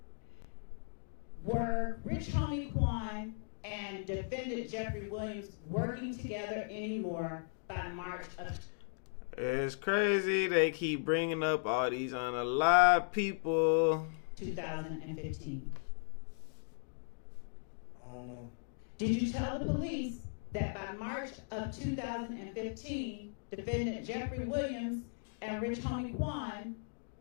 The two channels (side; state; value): right; silent; digital silence